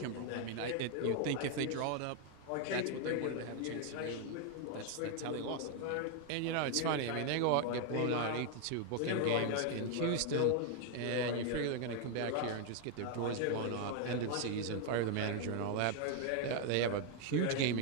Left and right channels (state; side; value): different; both; correlation 0.00